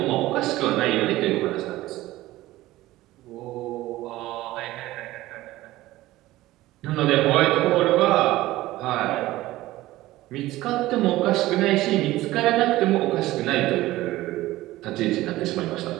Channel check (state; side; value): quieter; left; 16.9 dB